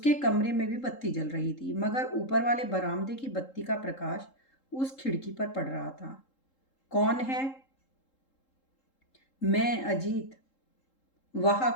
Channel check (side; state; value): right; late; 3.8 ms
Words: कमरे में भी बत्ती जल रही थी, मगर ऊपर वाले बरामदे की बत्ती का प्रकाश उस खिड़की पर पड़ रहा था। कौन है? मैं, अजीत। वहां